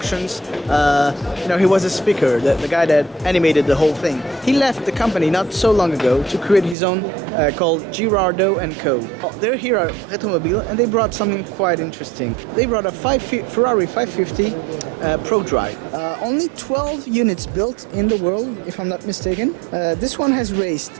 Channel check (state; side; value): drops out; left; at 6.8 s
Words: You know, he was a speaker, the guy that animated the whole thing. He left the company not so long ago to create his own called Girardo & Co. They're here at Retromobile, and they brought something quite interesting. They brought a Ferrari 550 Pro Drive. Only 12 units built in the world, if I'm not mistaken. This one has raced